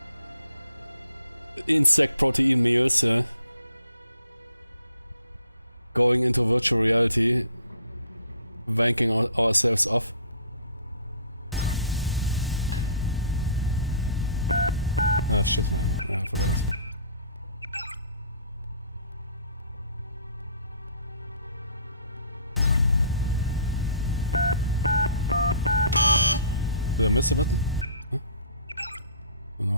insect protein meals, yeah. Going into virtual reality. Wanking ourselves off. Ah, shit, man. Yeah, I forgot it. Did I miss a button? Huh? Oh,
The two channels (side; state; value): both; inverted; correlation -0.55